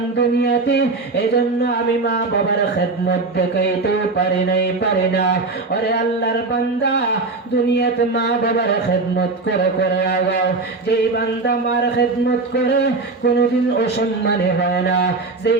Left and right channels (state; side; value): quieter; left; 3.6 dB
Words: দুনিয়াতে, এজন্য আমি মা বাবার খেদমত দেখাইতেও পারি না। ওরে আল্লাহর বান্দা, দুনিয়াতে মা বাবার খেদমত করে আগাও। যেই বান্দা মার খেদমত করে কোনোদিন অসম্মানে হয় না,